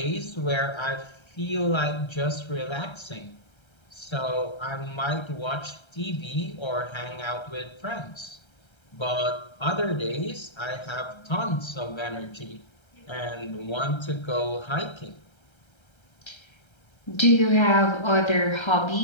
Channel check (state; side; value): late; right; 1.3 ms